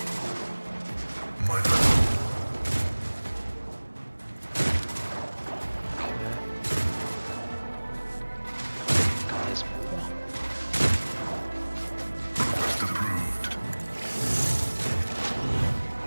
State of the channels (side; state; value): both; inverted; correlation -1.00